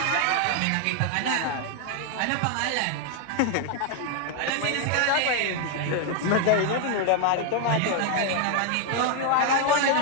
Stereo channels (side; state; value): both; different; correlation 0.00